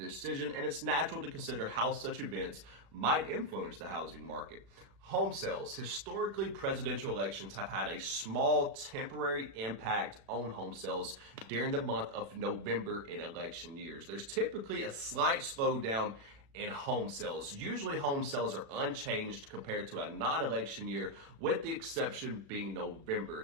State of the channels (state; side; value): late; left; 36 ms